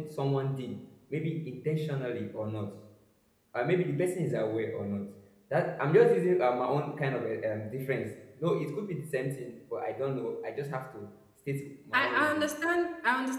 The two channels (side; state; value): both; identical; correlation 1.00